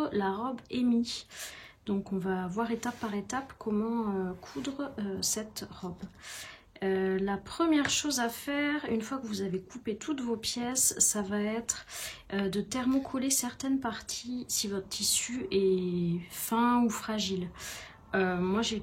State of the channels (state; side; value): identical; both; correlation 1.00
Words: la robe Amy. Donc on va voir étape par étape comment coudre cette robe. La première chose à faire, une fois que vous avez coupé toutes vos pièces, ça va être de thermocoller certaines parties si votre tissu est fin ou fragile. Moi